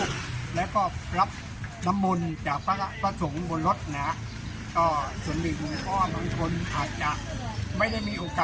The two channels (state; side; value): identical; both; correlation 1.00